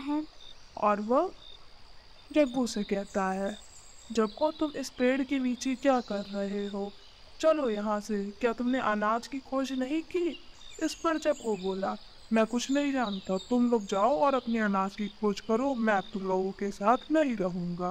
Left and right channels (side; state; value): both; identical; correlation 1.00